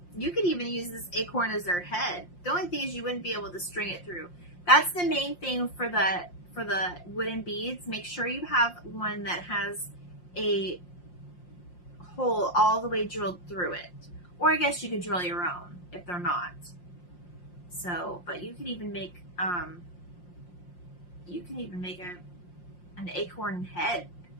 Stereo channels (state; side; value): late; right; 5.7 ms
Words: You could even use this acorn as their head. The only thing is you wouldn't be able to string it through. That's the main thing for the wooden beads. Make sure you have one that has a hole all the way drilled through it. Or I guess you could drill your own if they're not. So, but you could even make an acorn head